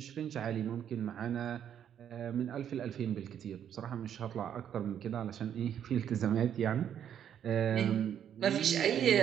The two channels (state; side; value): quieter; left; 9.4 dB